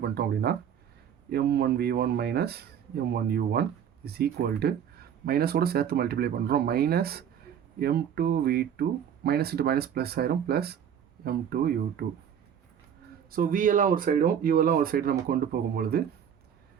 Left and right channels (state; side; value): quieter; left; 8.7 dB